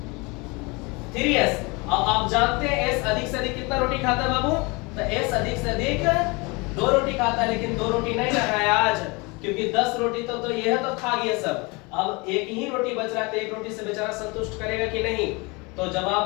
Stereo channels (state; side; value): quieter; right; 27.2 dB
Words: अब आप जानते हैं S अधिक से अधिक कितना रोटी खाता है बाबू, तो S अधिक से अधिक 2 रोटी खाता है, लेकिन 2 रोटी नहीं रहा है आज, क्योंकि 10 रोटी तो ये है तो खा गया सब। अब एक ही रोटी बच रहा है, तो एक रोटी से बेचारा संतुष्ट करेगा कि नहीं, तो